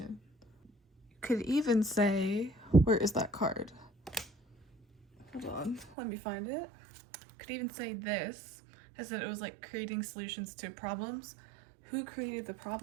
You could even say, where is that card? Hold on, let me find it. Could even say this. I said it was like creating solutions to problems. Who created the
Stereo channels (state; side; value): drops out; left; at 6.0 s